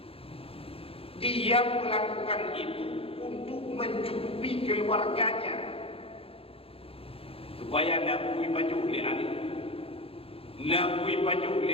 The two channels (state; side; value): late; right; 0.27 ms